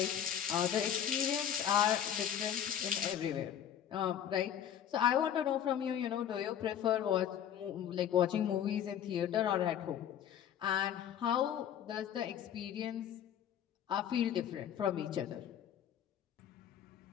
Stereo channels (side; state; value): right; quieter; 9.7 dB